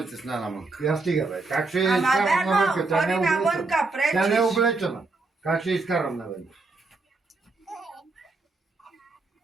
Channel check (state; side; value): quieter; left; 3.6 dB